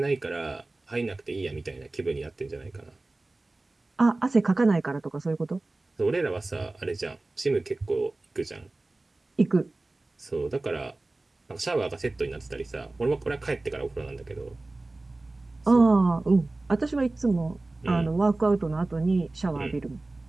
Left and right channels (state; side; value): quieter; left; 3.0 dB